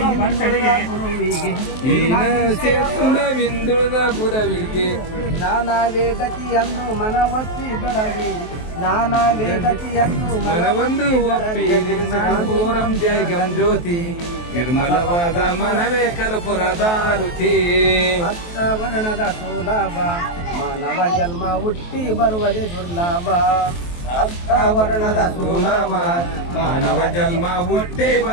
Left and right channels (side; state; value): right; late; 23 ms